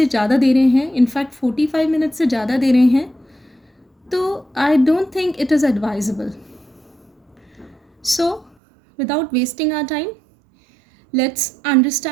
ज़्यादा दे रहे हैं, इनफैक्ट 45 मिनट से ज़्यादा दे रहे हैं, तो I don't think it is advisable. So without wasting our time, let's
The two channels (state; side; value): drops out; left; at 8.6 s